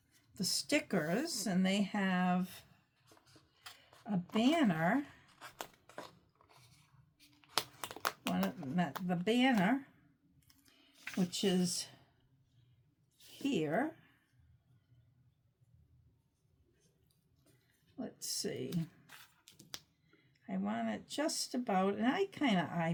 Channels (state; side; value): identical; both; correlation 1.00